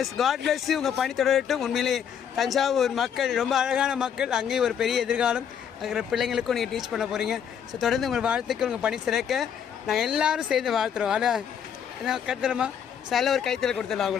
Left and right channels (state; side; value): quieter; right; 8.3 dB